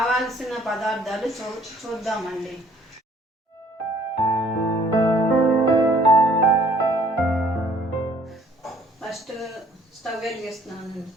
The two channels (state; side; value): normal; both; correlation 0.59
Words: పదార్థాలు చూద్దామండి. ఫస్ట్ స్టవ్ వెలిగిస్తున్నానండి.